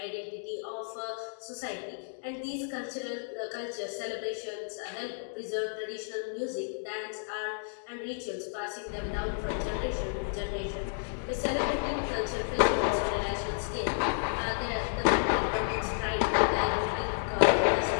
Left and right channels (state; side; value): silent; right; digital silence